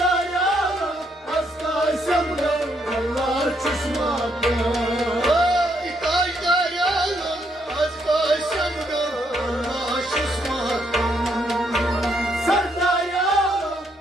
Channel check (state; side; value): normal; both; correlation 0.74